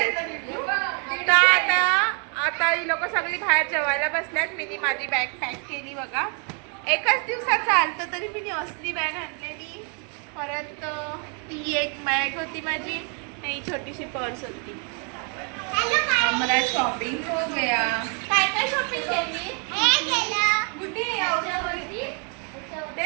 तर आता ही लोक सगळी बाहेर जेवायला बसल्यात. मी माझी बॅग पॅक केली बघा. एकच दिवसात चालतं तरी मी असली बॅग आणलेली. परत ती एक बॅग होती माझी आणि छोटीशी पर्स होती. मला शॉपिंग हो गया. काय काय शॉपिंग केली? कुठे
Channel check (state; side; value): quieter; left; 38.1 dB